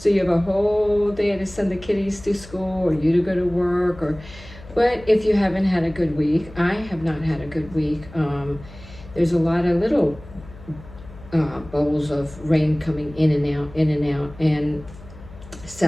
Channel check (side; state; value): left; noise; hum, 18 dB below the sound